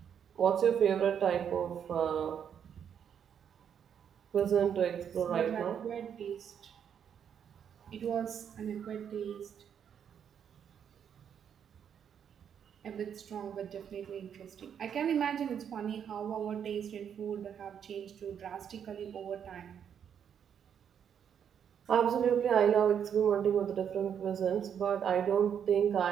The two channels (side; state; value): left; quieter; 8.2 dB